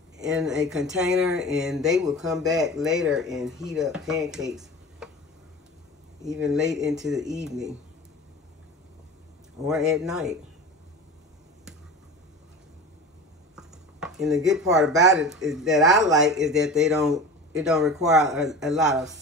in a container, and they will come back later and heat up pancakes even late into the evening or at night. And the good part about it is that I like is that it don't require a lot of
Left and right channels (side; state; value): both; normal; correlation 0.34